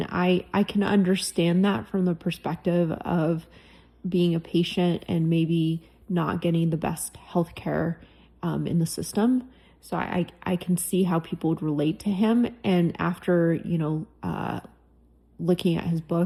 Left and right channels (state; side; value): identical; both; correlation 1.00